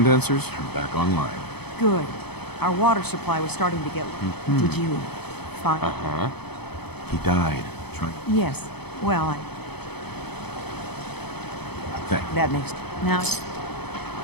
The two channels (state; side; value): late; right; 0.98 ms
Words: are back online. Good. Our water supply was starting to get... Did you find... Uh-huh. He died trying... Yes. Well, Thank you. that makes... Now...